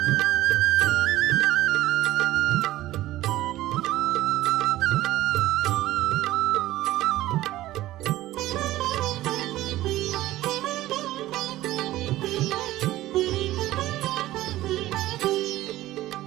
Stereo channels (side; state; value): left; quieter; 15.7 dB